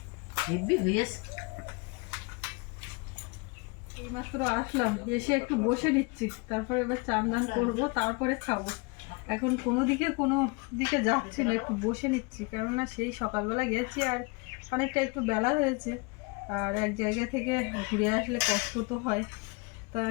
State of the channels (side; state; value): right; quieter; 30.2 dB